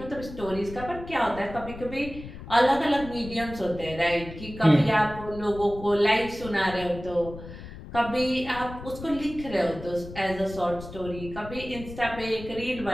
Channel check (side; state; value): left; noise; rumble, 13 dB below the sound